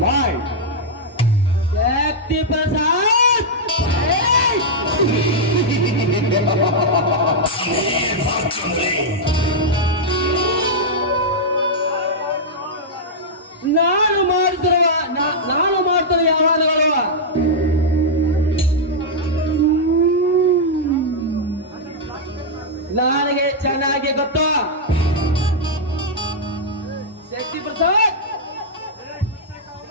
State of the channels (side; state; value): both; normal; correlation -0.06